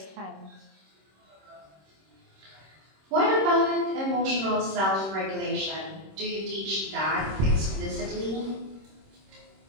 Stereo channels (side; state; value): left; late; 26 ms